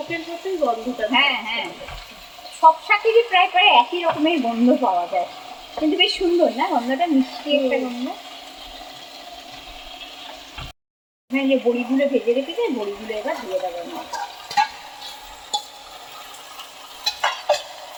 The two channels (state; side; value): identical; both; correlation 1.00